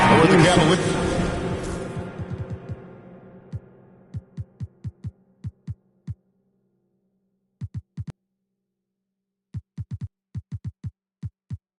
Or the Cavaliers.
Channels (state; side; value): identical; both; correlation 1.00